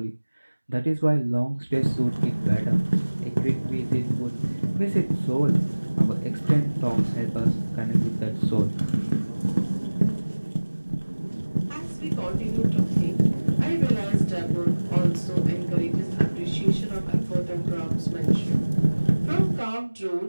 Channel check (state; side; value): inverted; both; correlation -1.00